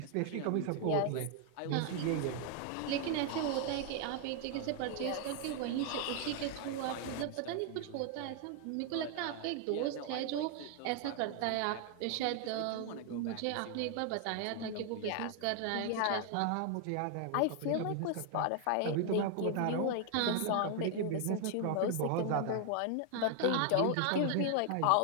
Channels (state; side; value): different; both; correlation 0.00